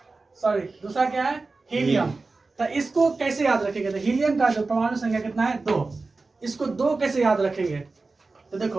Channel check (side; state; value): left; quieter; 3.7 dB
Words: सॉरी दूसरा क्या है, हीलियम। तो इसको कैसे याद रखेंगे, तो हीलियम का जो परमाणु संख्या कितना है, 2। इसको 2 कैसे याद रखेंगे, तो